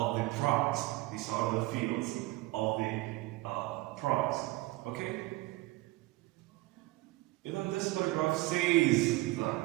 prize. These are the fields of the prize. Okay? Even this paragraph says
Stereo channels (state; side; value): quieter; left; 19.3 dB